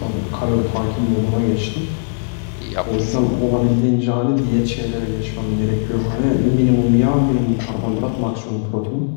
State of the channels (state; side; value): silent; right; digital silence